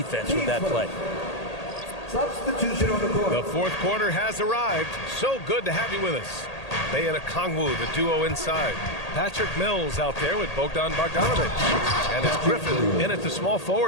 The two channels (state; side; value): late; right; 1.8 ms